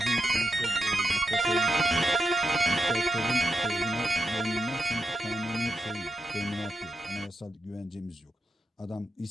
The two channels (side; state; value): both; normal; correlation 0.85